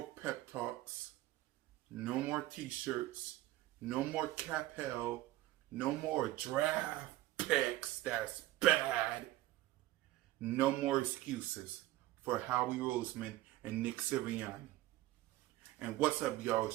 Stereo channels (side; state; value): left; quieter; 16.3 dB